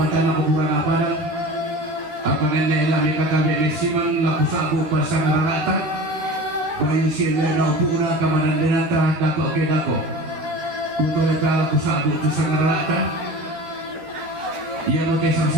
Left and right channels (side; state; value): left; late; 13 ms